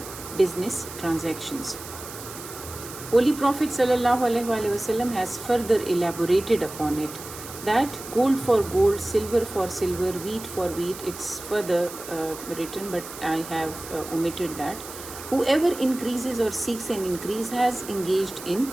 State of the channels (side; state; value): right; noise; hiss, 13 dB below the sound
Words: business transactions. Holy Prophet sallallahu alaihi wasallam has further elaborated upon it, that gold for gold, silver for silver, wheat for wheat. It's further written, but I have omitted that. Whoever increases or seeks an increase has engaged in